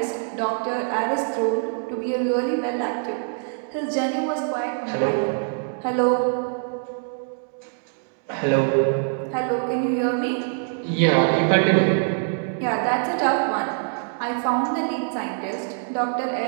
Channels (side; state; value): left; silent; digital silence